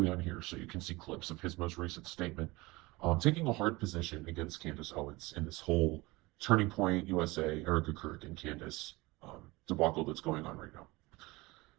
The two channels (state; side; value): quieter; left; 22.1 dB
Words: on here so you can see clips of his most recent statement, taking a hard position against Candace Owens in this whole Turning Point USA, Erica Kirk, and Candace debacle that's going on right now.